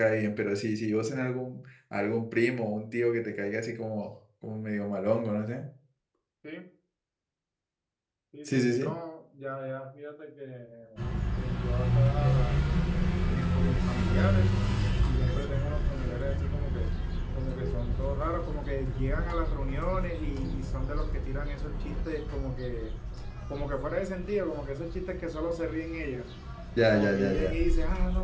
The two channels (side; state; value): both; identical; correlation 1.00